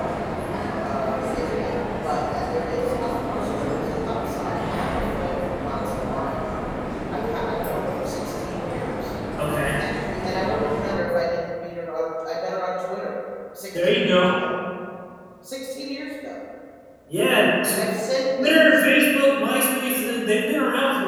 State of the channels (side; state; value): both; identical; correlation 1.00